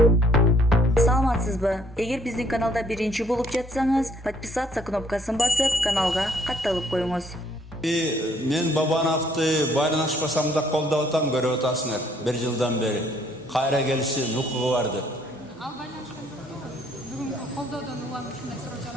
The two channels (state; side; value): normal; both; correlation 0.64